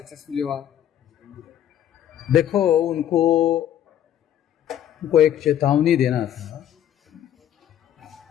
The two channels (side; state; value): right; quieter; 10.8 dB